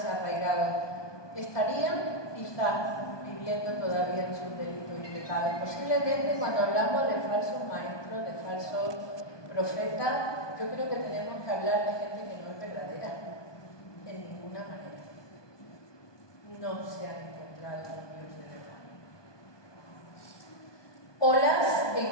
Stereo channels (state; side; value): late; right; 1.2 ms